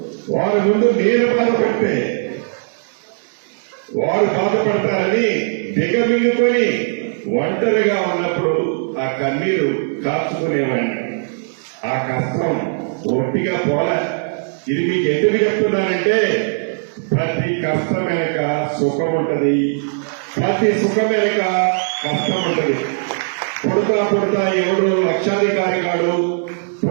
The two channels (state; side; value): silent; left; digital silence